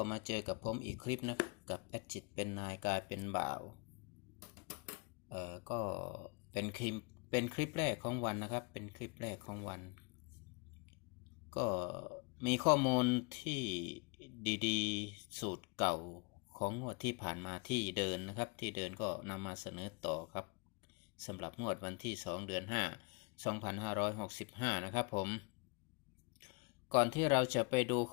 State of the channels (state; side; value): quieter; right; 31.4 dB